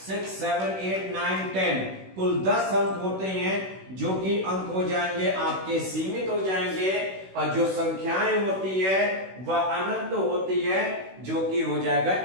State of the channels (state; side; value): late; left; 16 ms